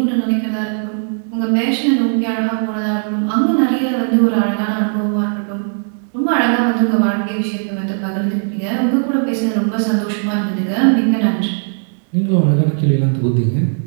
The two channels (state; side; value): silent; left; 64 dB below the other